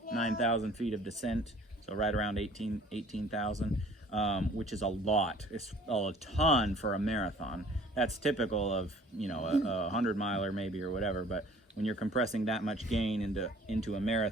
9,000 feet of descent. So right around 18,000, which is a lot. It's a ton for a marathon. That's typical of, you know, a 100-miler maybe or whatever. But when you're compressing that much gain into a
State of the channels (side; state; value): both; normal; correlation 0.52